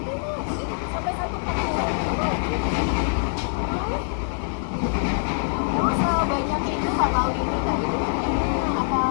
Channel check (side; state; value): right; silent; digital silence